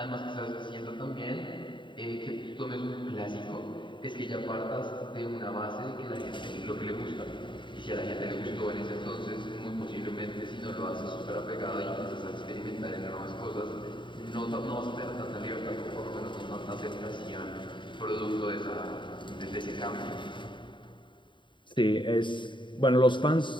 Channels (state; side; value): late; right; 0.23 ms